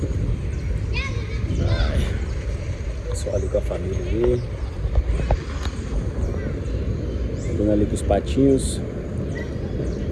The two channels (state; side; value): identical; both; correlation 1.00